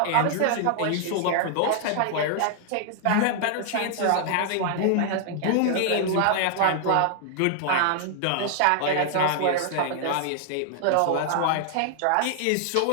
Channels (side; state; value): both; different; correlation 0.00